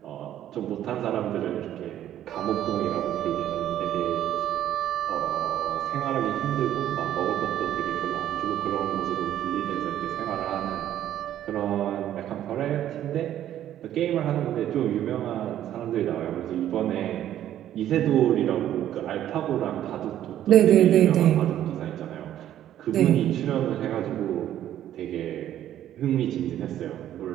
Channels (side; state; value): left; quieter; 11.7 dB